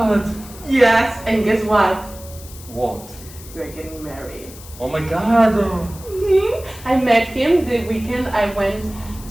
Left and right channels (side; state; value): left; noise; hiss, 18 dB below the sound